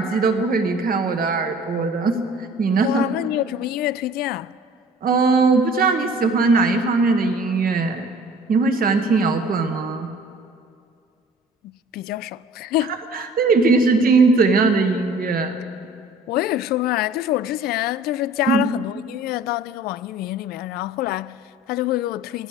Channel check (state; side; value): normal; both; correlation 0.49